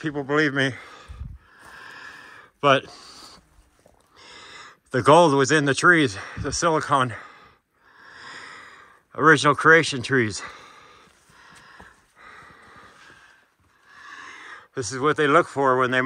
believe me. But the gold was in the trees, the silicon, original creation trees. This is what they look for when they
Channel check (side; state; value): both; identical; correlation 1.00